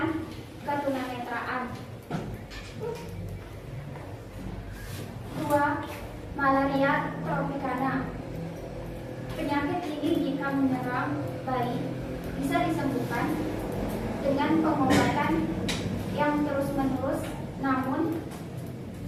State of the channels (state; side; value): identical; both; correlation 1.00